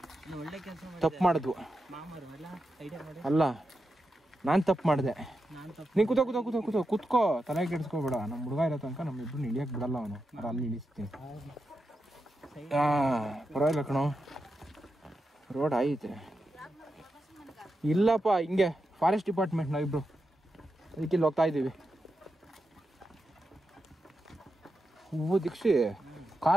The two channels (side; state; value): both; normal; correlation 0.88